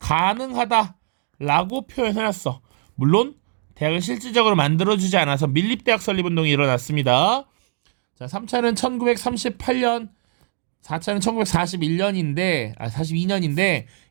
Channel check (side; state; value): left; silent; digital silence